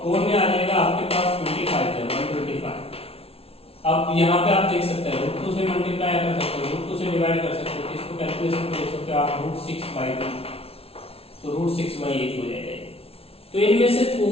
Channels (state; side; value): late; right; 0.28 ms